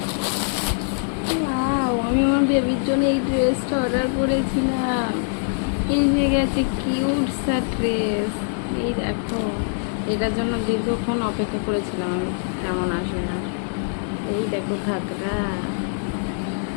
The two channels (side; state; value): right; silent; 58 dB below the other